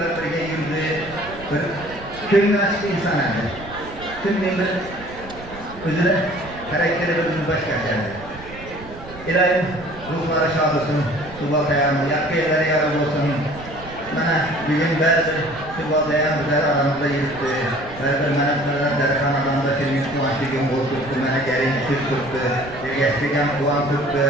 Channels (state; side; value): noise; right; rumble, 16 dB below the sound